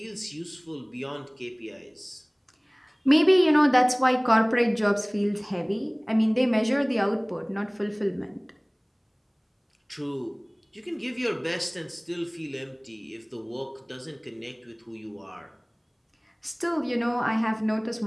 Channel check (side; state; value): both; identical; correlation 1.00